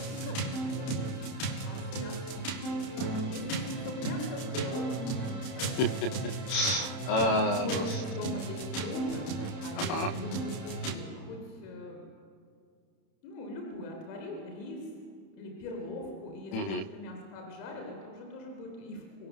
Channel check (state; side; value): late; right; 31 ms